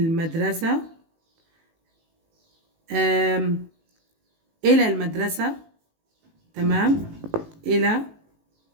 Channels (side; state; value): left; late; 18 ms